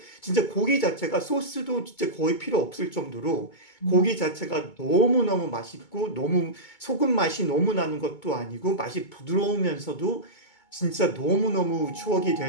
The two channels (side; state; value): right; late; 2.2 ms